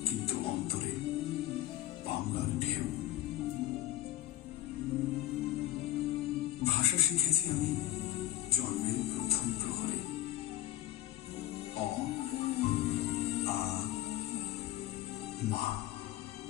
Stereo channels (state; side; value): quieter; right; 14.3 dB